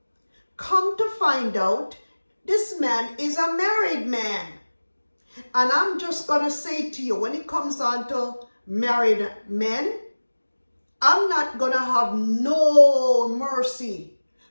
Come to find out, this man is a married man. And I'm just going to say to you, when it comes on to married men, I'm not going to have no mercy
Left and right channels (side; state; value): both; inverted; correlation -1.00